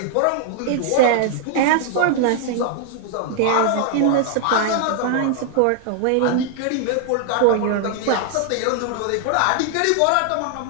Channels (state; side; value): different; both; correlation 0.00